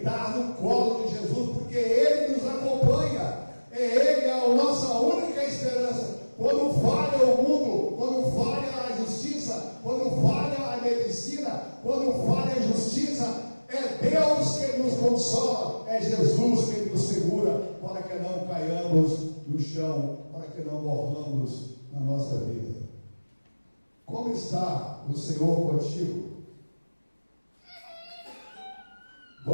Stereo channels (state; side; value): inverted; both; correlation -1.00